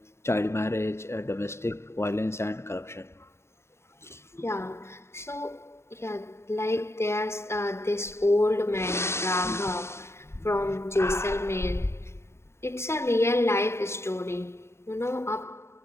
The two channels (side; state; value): right; late; 0.13 ms